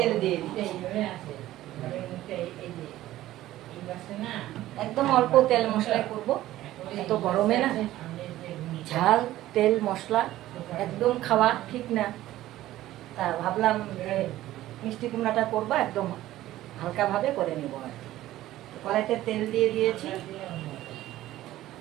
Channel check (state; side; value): quieter; left; 14.9 dB